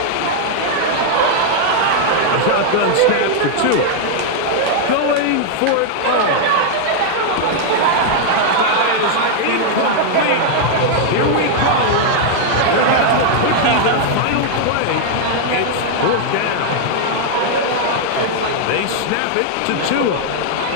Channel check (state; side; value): different; both; correlation -0.01